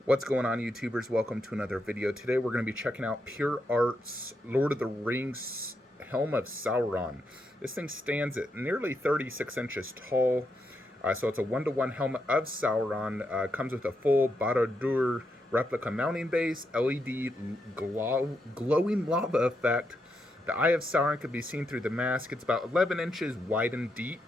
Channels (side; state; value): both; normal; correlation 0.82